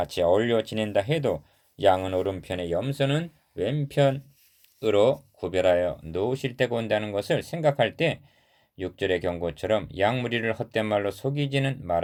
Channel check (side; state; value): both; identical; correlation 1.00